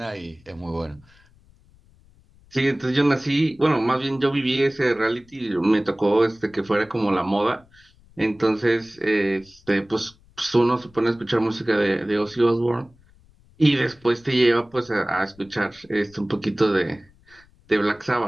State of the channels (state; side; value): noise; left; rumble, 29 dB below the sound